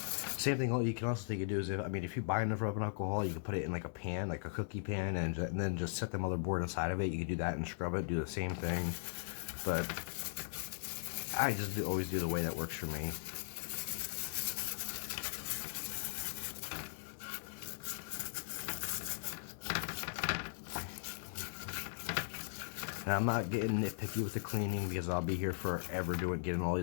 Same thing. You can also take you do is if you buy enough rubbing alcohol, you can put it in like a pan, like a cookie pan, and then just set the motherboard inside of it. You could do that and scrub it. Do the same thing, but I just always do the way that works for me. And I'm not getting nitpicky with the cleaning because I'll be here forever getting all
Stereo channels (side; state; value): right; silent; digital silence